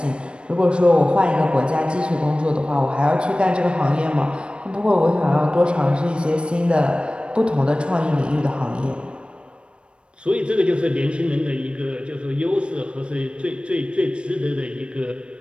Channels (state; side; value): late; left; 0.057 ms